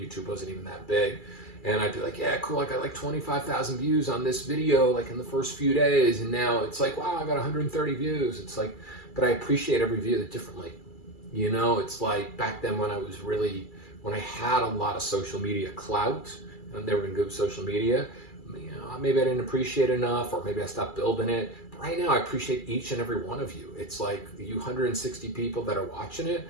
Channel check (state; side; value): late; right; 2.3 ms